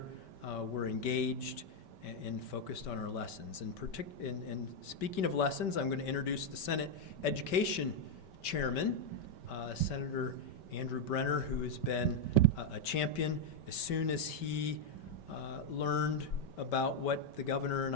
we're engaged and focused on our lessons. And speaking of lessons, I'm going to introduce the Senate Education Chairman, Senator Andrew Brenner, who has been a champion. As soon as he learned about what the governor and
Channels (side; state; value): right; late; 5.2 ms